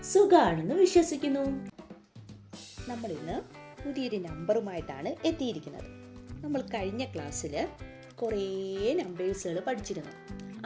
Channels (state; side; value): identical; both; correlation 1.00